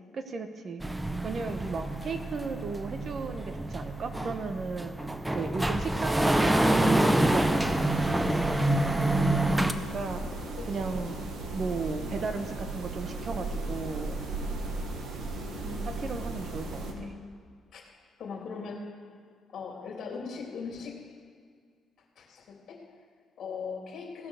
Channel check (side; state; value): both; normal; correlation 0.88